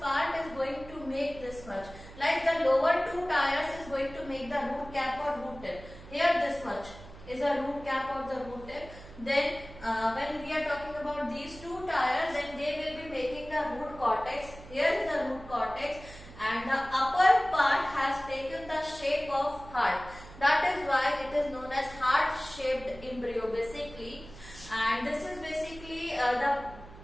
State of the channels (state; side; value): noise; right; hum, 17 dB below the sound